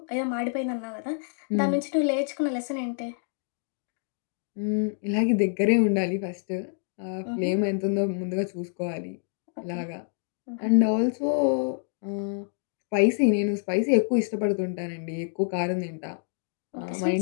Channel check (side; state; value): right; silent; digital silence